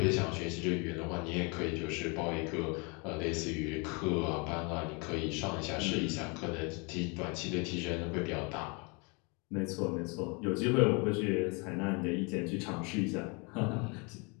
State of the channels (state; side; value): quieter; right; 31.5 dB